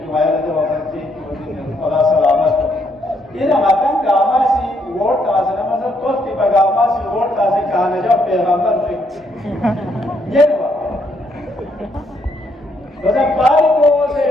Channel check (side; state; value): both; normal; correlation 0.73